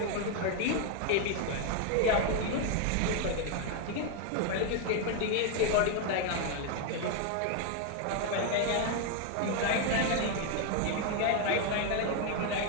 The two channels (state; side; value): different; both; correlation 0.01